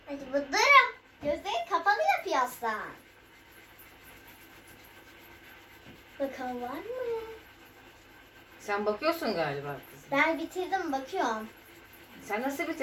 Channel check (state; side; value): identical; both; correlation 1.00